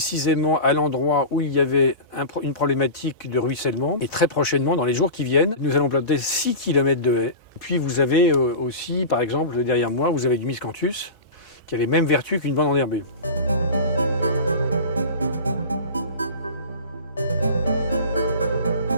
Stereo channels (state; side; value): inverted; both; correlation -0.31